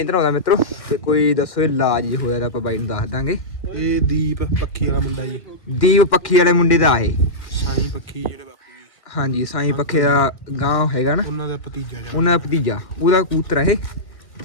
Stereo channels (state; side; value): late; right; 1.8 ms